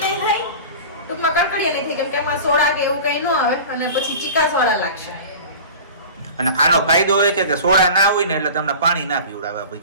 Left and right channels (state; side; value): inverted; both; correlation -0.37